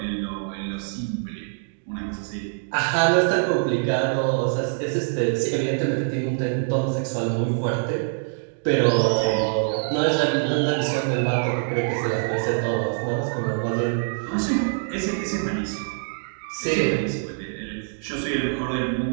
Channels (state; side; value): silent; left; digital silence